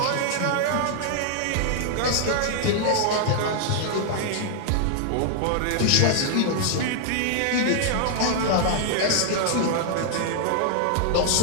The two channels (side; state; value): both; different; correlation -0.01